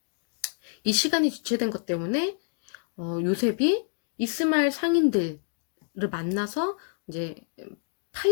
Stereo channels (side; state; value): right; silent; digital silence